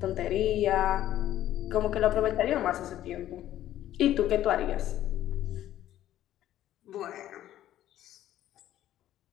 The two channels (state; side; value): quieter; right; 12.8 dB